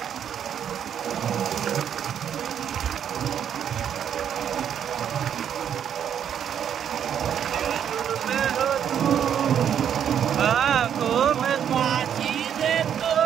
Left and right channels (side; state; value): left; quieter; 8.9 dB